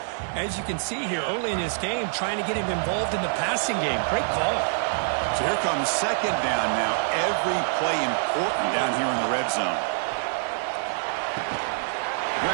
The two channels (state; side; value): silent; left; 61 dB below the other